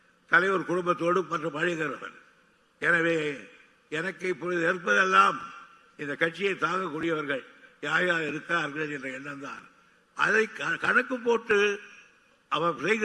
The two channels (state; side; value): identical; both; correlation 1.00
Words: தலைவர் குடும்பத்தோடு மற்றும் பழகிறவன். எனவே எனக்கு இப்பொழுது இருப்பதெல்லாம் இந்த கட்சியை தாங்கக்கூடியவர்கள் யார் யார் இருக்கிறார்கள் என்ற எண்ணம் தான். அதை கணக்கு போட்டு அவர்